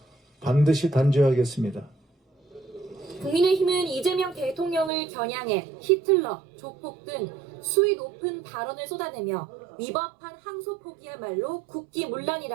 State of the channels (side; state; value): left; drops out; at 4.9 s